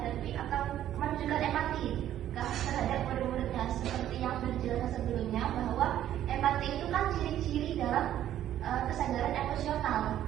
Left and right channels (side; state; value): left; quieter; 11.7 dB